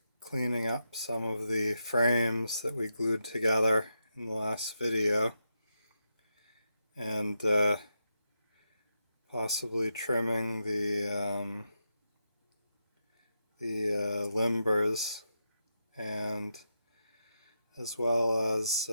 cleaning up some of the frames that we glued together in the last video and possibly trimming the limbers, and as well as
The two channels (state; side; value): inverted; both; correlation -0.86